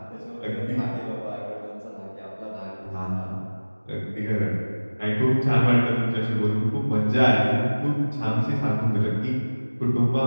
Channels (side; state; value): both; inverted; correlation -1.00